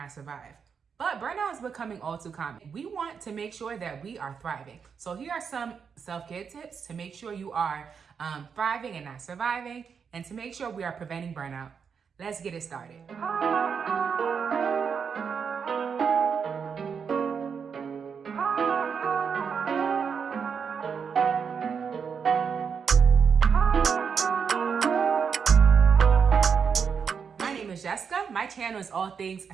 survive. But burnout is becoming all too common. We want to make sure that we are thriving. So here are some self-care tips to make sure you are thriving and not surviving, and to make sure we are preventing burnout. Let's get it started. Jessica. My channel is all things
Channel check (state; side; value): quieter; left; 6.4 dB